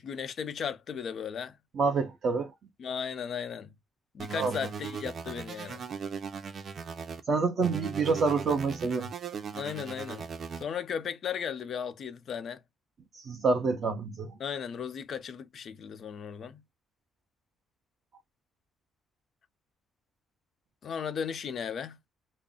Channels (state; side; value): normal; both; correlation 0.67